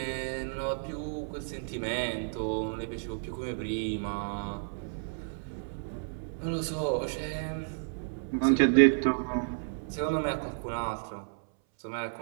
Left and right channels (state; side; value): silent; left; 57 dB below the other